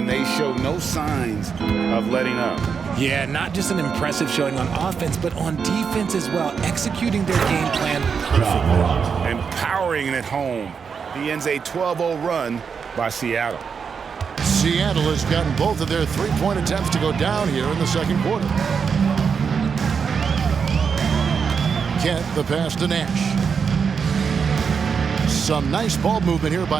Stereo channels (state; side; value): quieter; left; 6.2 dB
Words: they show no signs of letting up. Yeah, not just an impressive showing on offense, but on defense as well, executing their game plan perfectly. And powering it home. He ends a 12-0 run by Seattle. Seattle has gotten both of their three-point attempts to go down here in the second quarter. Kent, the pass to Nash. Some nice ball movement here